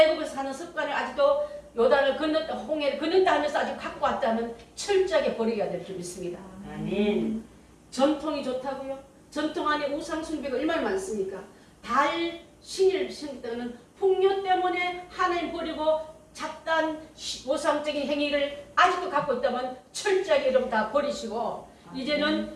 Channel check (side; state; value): both; identical; correlation 1.00